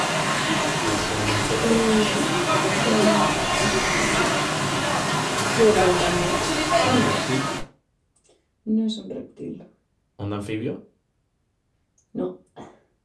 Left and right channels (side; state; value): both; identical; correlation 1.00